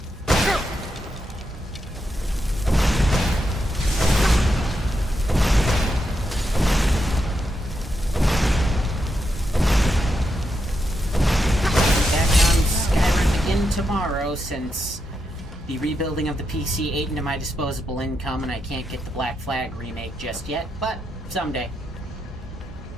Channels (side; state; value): both; normal; correlation 0.84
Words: Back on Skyrim again tomorrow, since the rebuilding of the PC ate into my disposable income and I can't get the Black Flag remake just yet, but someday.